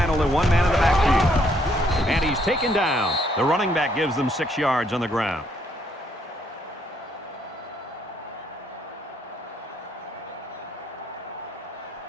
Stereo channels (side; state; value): both; normal; correlation 0.70